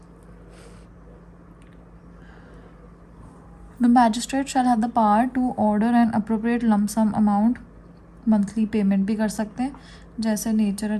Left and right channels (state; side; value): identical; both; correlation 1.00